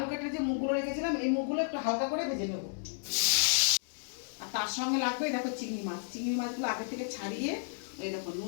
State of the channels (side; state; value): right; silent; digital silence